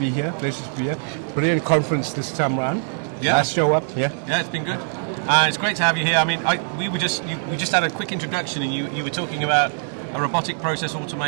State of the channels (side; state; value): left; silent; 64 dB below the other